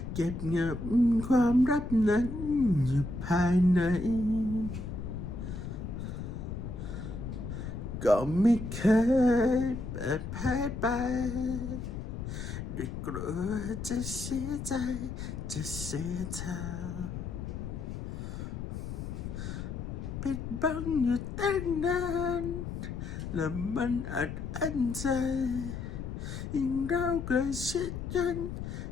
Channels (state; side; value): noise; left; rumble, 6 dB below the sound